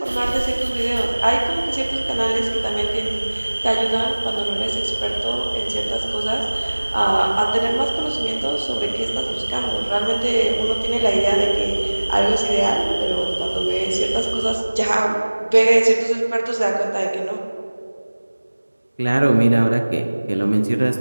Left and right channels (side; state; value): both; inverted; correlation -1.00